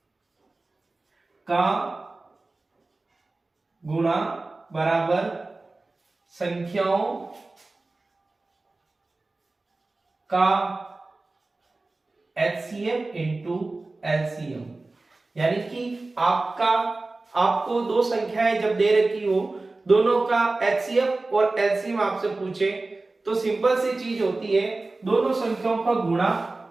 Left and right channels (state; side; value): quieter; left; 3.3 dB